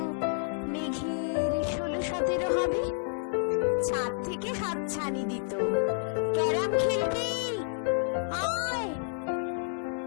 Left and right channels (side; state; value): right; silent; 58 dB below the other